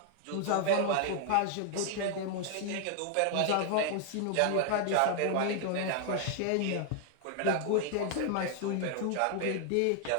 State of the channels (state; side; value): different; both; correlation 0.00